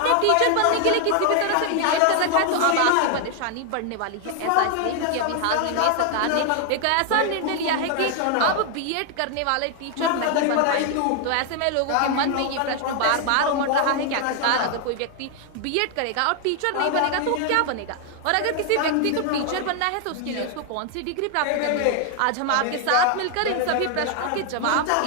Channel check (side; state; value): both; different; correlation 0.00